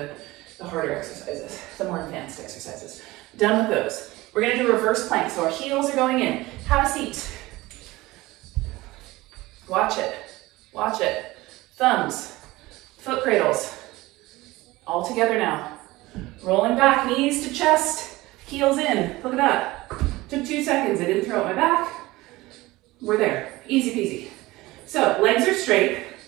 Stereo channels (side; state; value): left; quieter; 19.6 dB